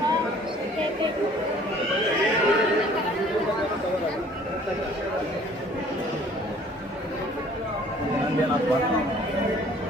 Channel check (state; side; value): normal; both; correlation 0.54